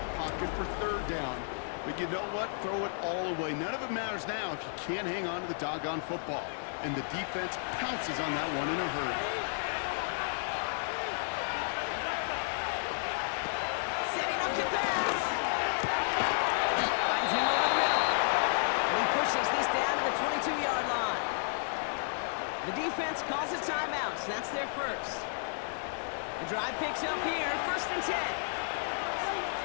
pocket for third down. But you know what? Throw it all away. None of it matters now if you can't hang on to the doggone football. And the defense pounces on that one in a hurry. Setting up to pass. Finds him over the middle. And he pushes this down to the 22-yard line. The defense calls a timeout, so that's their first. The drive picks up here, 1st and 10.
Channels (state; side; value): silent; right; digital silence